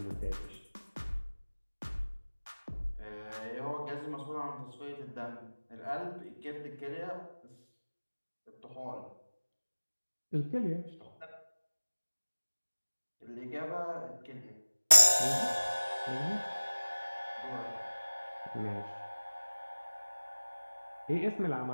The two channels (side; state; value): both; inverted; correlation -1.00